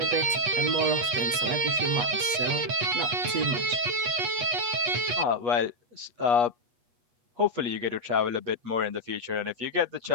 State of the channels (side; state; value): left; late; 8.3 ms